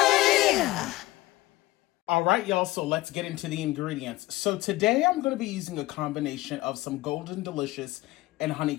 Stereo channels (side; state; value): right; quieter; 18.4 dB